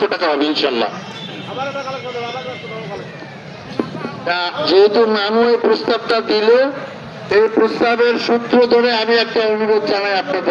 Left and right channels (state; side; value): identical; both; correlation 1.00